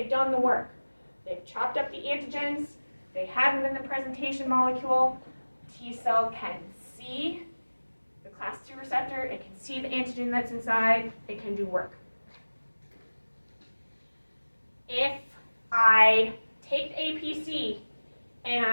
done the work. They've chopped up the antigens. They have them in the presentation molecule. T cell can see the class 2 receptor. It can see the antigen that's inside. It can do work. If I take the APC and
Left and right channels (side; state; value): both; inverted; correlation -1.00